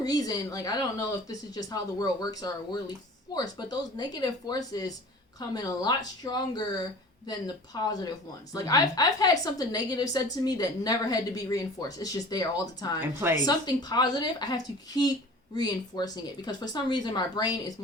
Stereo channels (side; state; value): both; normal; correlation 0.42